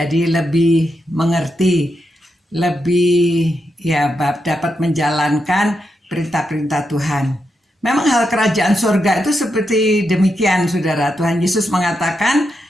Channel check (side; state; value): both; normal; correlation 0.85